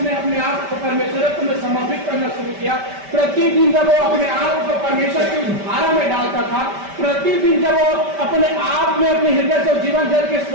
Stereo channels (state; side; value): late; left; 5.1 ms